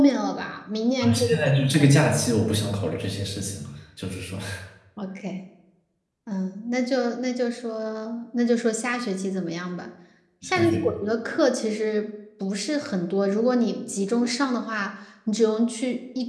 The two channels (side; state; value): both; identical; correlation 1.00